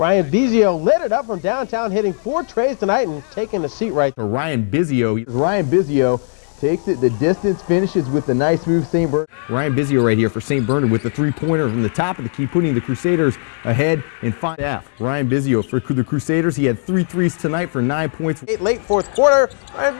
Bisio lit it up from downtown, hitting 4 trays tonight and taking a seat right for Ryan Bisio. Ryan Bisio takes it the distance, finishes with a nice move. St. Bernard. Ryan Bisio right here for St. Bernard with the 3-pointer from the top of the key, putting the Crusaders ahead in 5-half. Ryan Bisio for the Crusaders. He had 3 threes tonight for 9 points. Late fourth quarter,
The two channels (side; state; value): right; silent; digital silence